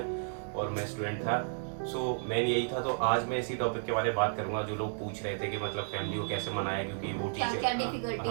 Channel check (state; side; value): silent; left; digital silence